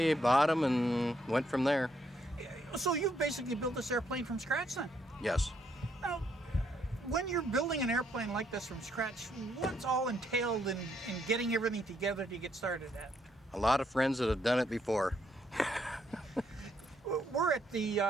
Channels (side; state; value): both; normal; correlation 0.73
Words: bought them, and went from there. So you've basically built this airplane from scratch then? Yes. Now, when you're building an airplane like this from scratch, what's all entailed in getting everything together to get started at? A lot of friends that have done it before. We're at the